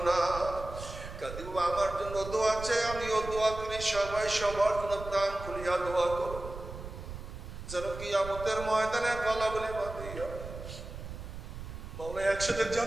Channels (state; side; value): noise; right; rumble, 10 dB below the sound